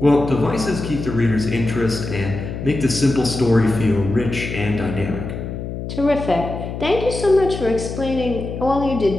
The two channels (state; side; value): noise; left; hum, 7 dB below the sound